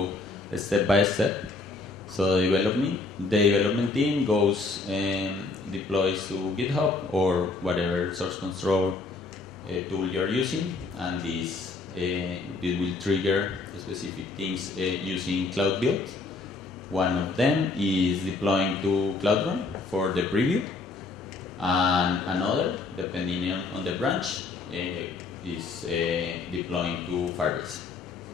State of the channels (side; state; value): right; quieter; 3.7 dB